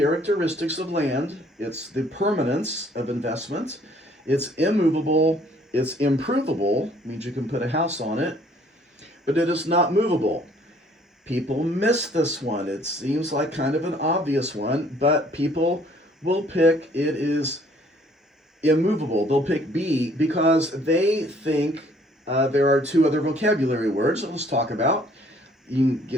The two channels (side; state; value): both; normal; correlation 0.60